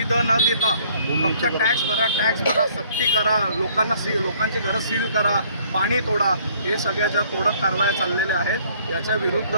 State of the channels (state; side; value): inverted; both; correlation -0.60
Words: न देता फक्त टॅक्स भरा, सक्ती करा, लोकांची घरं सील करा, पाणी तोडा, हे सगळ्याच्या तोडक कारवाया चाललेल्या आहेत। याच्या विरुद्ध